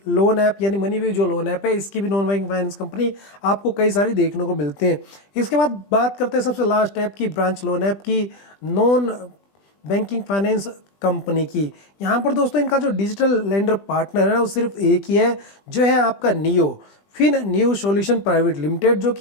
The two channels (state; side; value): late; right; 20 ms